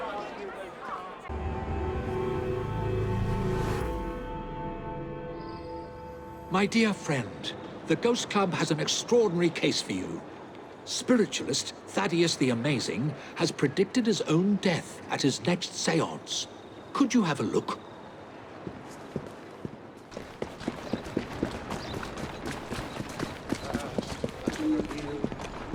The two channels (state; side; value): identical; both; correlation 1.00